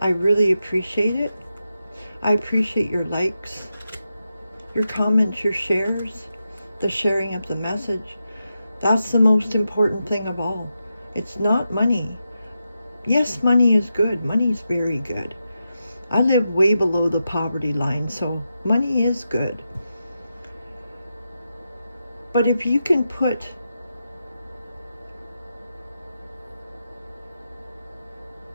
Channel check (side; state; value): both; inverted; correlation -0.87